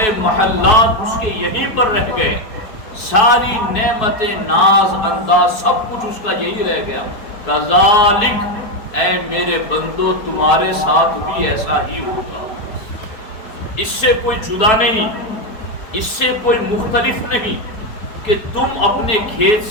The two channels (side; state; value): right; late; 4.6 ms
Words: محلات اس کے یہیں پر رہ گئے، ساری نعمتیں ناز انداز سب کچھ اس کا یہی رہ گیا، کذالک، اے میرے بندو تمہارے ساتھ بھی ایسا ہی ہوگا، اس سے کوئی جدا نہیں، اس سے کوئی مختلف نہیں کہ تم اپنے کھیت